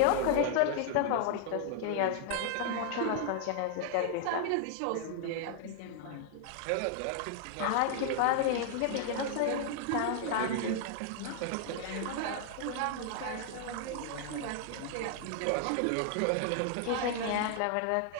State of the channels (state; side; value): different; both; correlation 0.00